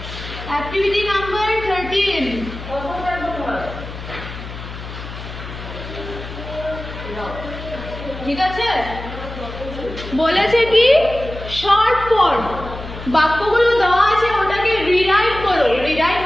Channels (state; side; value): noise; left; hum, 11 dB below the sound